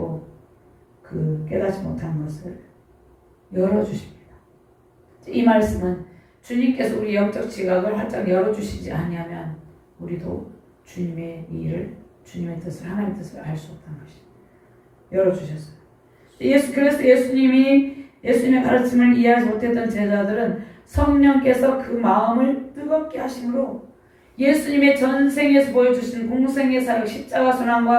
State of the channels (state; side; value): identical; both; correlation 1.00